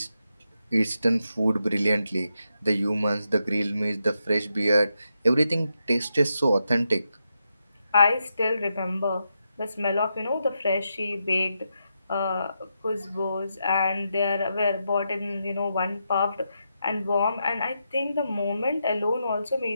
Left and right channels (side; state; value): both; inverted; correlation -0.84